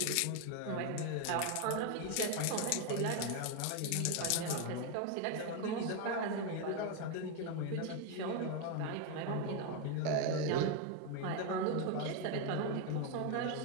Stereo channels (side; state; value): both; different; correlation 0.01